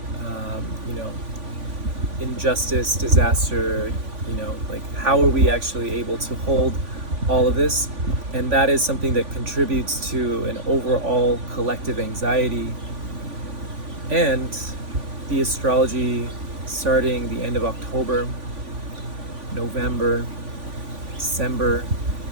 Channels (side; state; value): left; late; 3.5 ms